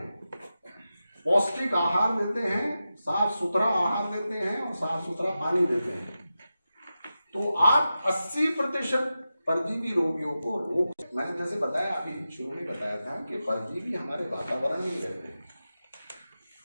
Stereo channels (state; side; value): inverted; both; correlation -0.92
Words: पौष्टिक आहार देते हैं, साफ सुथरा आहार देते हैं और साफ सुथरा पानी देते हैं, तो आप 80% परजीवी रोगियों को रोक। मैंने जैसे बताया, अभी शुरू में बताया था कि परजीवी हमारे वातावरण में ही रहते हैं